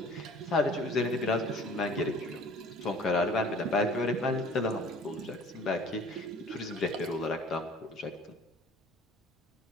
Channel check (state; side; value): normal; both; correlation 0.48